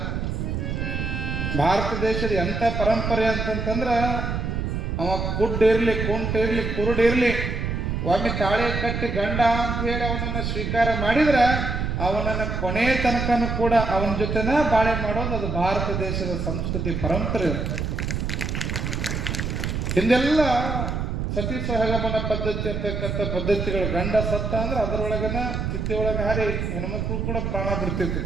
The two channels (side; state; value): right; noise; rumble, 2 dB below the sound